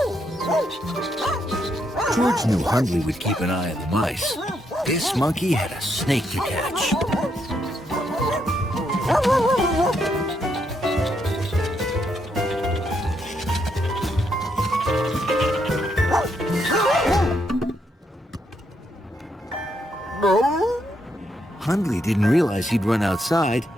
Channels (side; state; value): both; normal; correlation 0.78